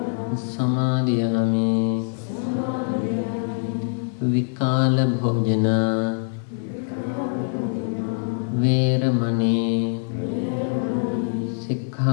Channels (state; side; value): silent; right; 63 dB below the other